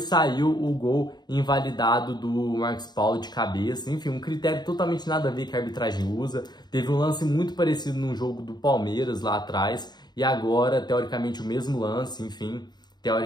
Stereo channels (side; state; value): right; late; 0.20 ms